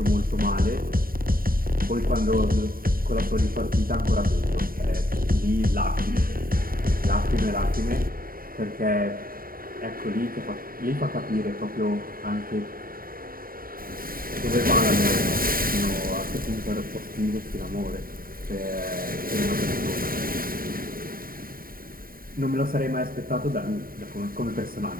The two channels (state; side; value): late; left; 0.42 ms